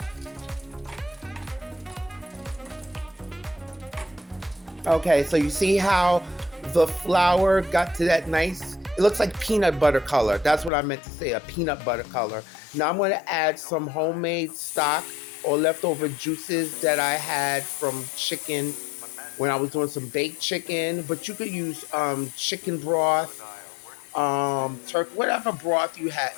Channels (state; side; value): drops out; right; at 10.7 s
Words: Okay, so you see how the flour got to that nice, it looks like peanut butter color. That's what I meant to say, a peanut butter color. Now I'm going to add some homemade stock or leftover juices that I had from chicken when I was doing some baked chicken. But you could use chicken broth, turkey, whatever broth